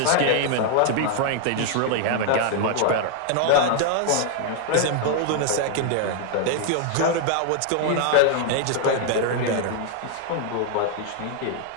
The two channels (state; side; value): different; both; correlation 0.00